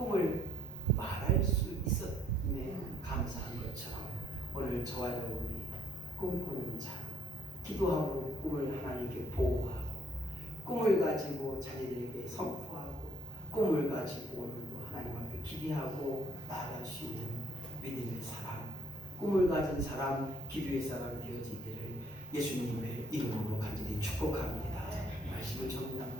말할 수 있었음에 감사한 것처럼 오늘 저와 여러분이 꿈꾸는 자, 기도하고 꿈을 하나님께 보호하고 꿈을 가지고 자녀들에게 선포하고 꿈을 가지고 오늘도 하나님 앞에 기대하고 나아갈 수 있는 믿음의 사람, 꿈을 가진 사람, 기도의 사람 되어지기를 예수님의 이름으로 간절히 축복합니다. 말씀을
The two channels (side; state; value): both; normal; correlation 0.65